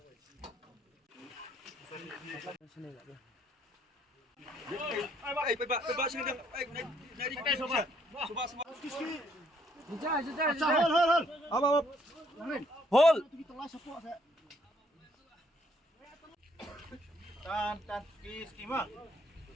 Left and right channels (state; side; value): normal; both; correlation 0.67